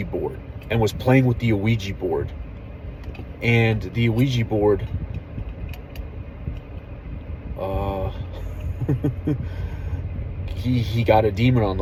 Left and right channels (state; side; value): identical; both; correlation 1.00